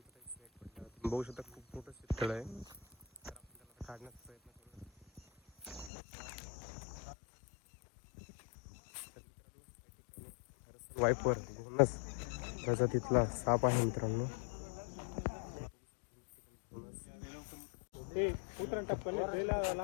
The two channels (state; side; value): drops out; right; at 5.9 s